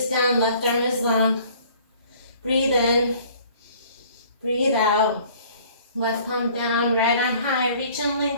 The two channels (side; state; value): both; inverted; correlation -0.54